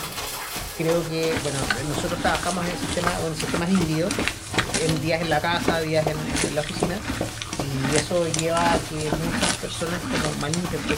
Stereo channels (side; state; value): both; identical; correlation 1.00